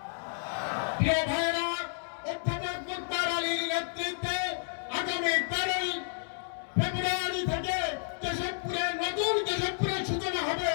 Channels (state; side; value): silent; right; 57 dB below the other